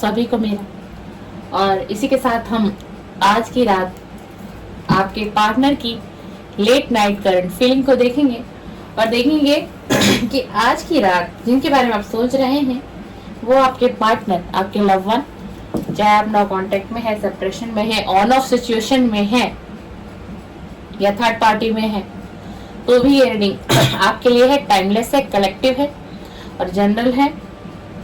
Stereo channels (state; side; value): identical; both; correlation 1.00